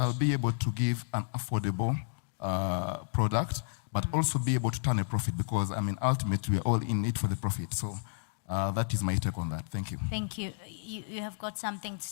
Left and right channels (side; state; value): right; silent; digital silence